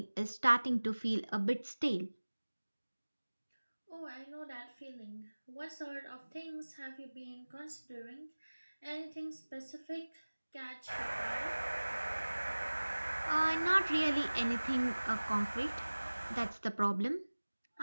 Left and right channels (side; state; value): both; inverted; correlation -1.00